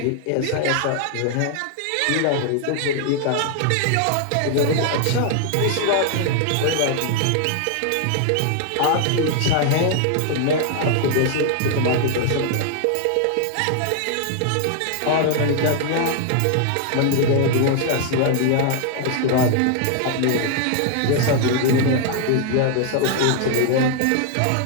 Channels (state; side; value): different; both; correlation 0.00